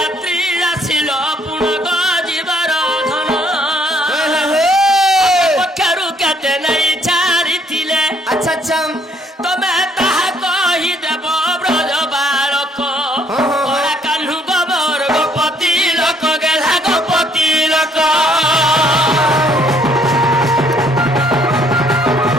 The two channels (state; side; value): normal; both; correlation 0.65